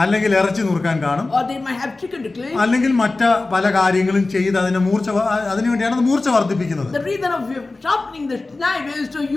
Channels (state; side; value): quieter; right; 3.3 dB